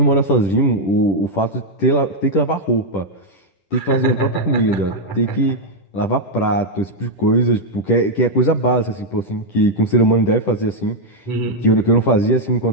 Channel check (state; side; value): late; right; 10 ms